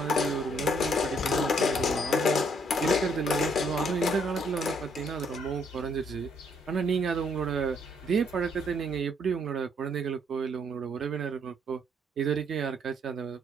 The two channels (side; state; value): both; normal; correlation 0.68